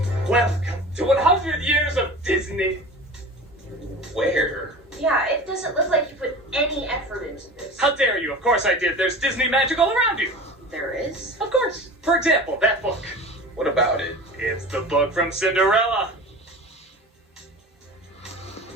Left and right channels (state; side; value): normal; both; correlation 0.36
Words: Welcome to 100 years of Disney. Where? Yeah, it doesn't look like you put any effort into this. How dare you? Of course I did. There's Disney magic all around you. There is? Of course. For example, that book. What about it? It's the book from Cinderella.